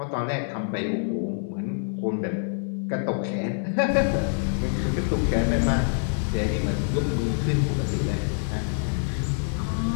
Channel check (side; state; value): right; silent; 60 dB below the other